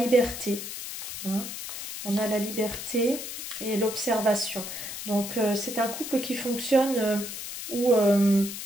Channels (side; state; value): left; noise; hiss, 8 dB below the sound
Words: Hein. On a la liberté et l'observation. Donc c'est un couple qui fonctionne où...